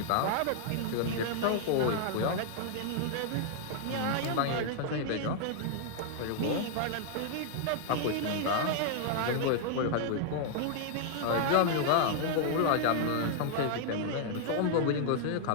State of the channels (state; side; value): different; both; correlation -0.01